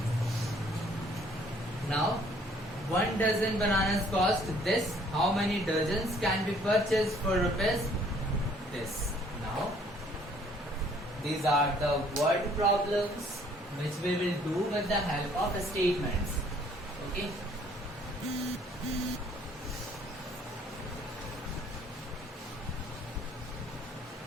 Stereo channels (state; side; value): normal; both; correlation 0.60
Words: Now 1 dozen bananas cost this. How many dozens can be purchased for rupees? This. Now these are the word problems which we will do with the help of statements. Okay.